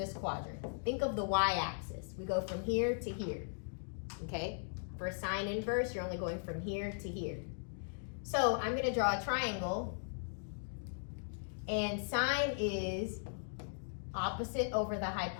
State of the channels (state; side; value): silent; right; digital silence